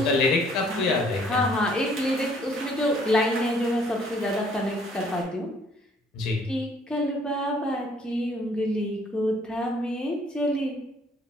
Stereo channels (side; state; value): both; normal; correlation 0.61